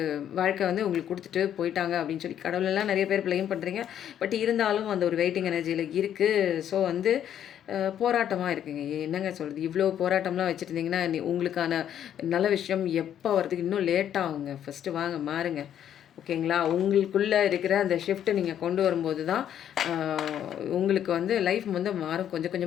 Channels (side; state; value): right; quieter; 10.1 dB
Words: வாழ்க்கை வந்து உங்களுக்கு குடுத்துட்டு போயிட்டாங்க அப்படின்னு சொல்லி கடவுளெல்லாம் நெறைய பேர் ப்ளேம் பண்றீங்க. பட் இருந்தாலும் அந்த ஒரு வெயிட்டிங் எனர்ஜில இருக்கு. ஸோ வந்து போராட்டமா இருக்குங்க. என்னங்க சொல்றது? இவ்ளோ போராட்டம்லாம் வச்சுருந்தீங்கன்னா, உங்களுக்கான நல்ல விஷயம் எப்ப வரதுக்கு இன்னும் லேட் ஆகுங்க. ஃபர்ஸ்ட்டு வாங்க மாறுங்க. ஓகேங்களா? உங்களுக்குள்ள இருக்கிற அந்த ஷிஃப்ட் நீங்க கொண்டு வரும்போது தான், அ உங்களுக்கு வந்து லைஃப் வந்து மாறும். கொஞ்சம்